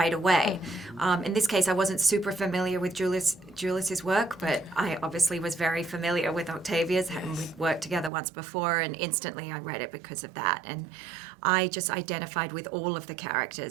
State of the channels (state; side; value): drops out; left; at 8.1 s